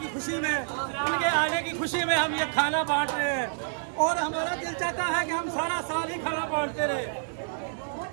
खुशी में, उनके आने की खुशी में हम ये खाना बांट रहे हैं और हमारा दिल चाहता है कि हम सारा साल ही खाना बांटते रहे।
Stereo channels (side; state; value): left; silent; digital silence